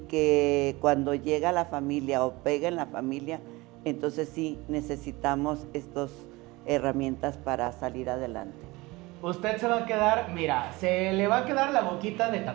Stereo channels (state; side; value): quieter; left; 22.2 dB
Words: cuando llega la familia o pega en la familia, entonces sí necesitamos estas herramientas para salir adelante. Usted se va a quedar, mira, se le va a quedar la boquita de